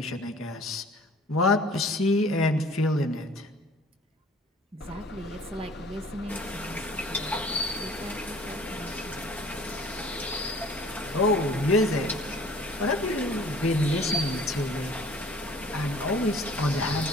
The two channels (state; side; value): normal; both; correlation 0.50